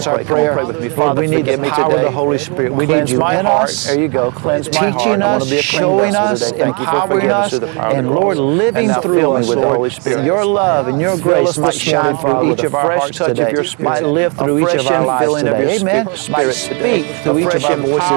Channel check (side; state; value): left; quieter; 34.7 dB